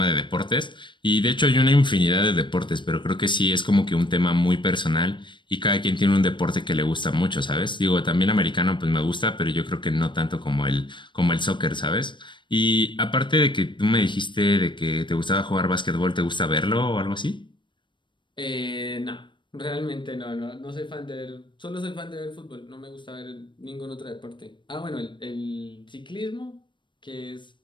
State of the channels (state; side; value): late; right; 0.23 ms